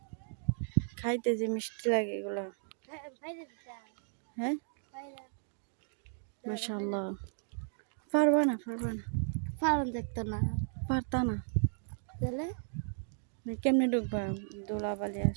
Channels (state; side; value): silent; left; digital silence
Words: খাইতে যে মিষ্টি লাগে এগুলো। হ্যাঁ মাশাআল্লাহ, পারবা না পারুন দেখতো না, পারতা না তাহলে কেমনে ঢুকবা, দোলাবালি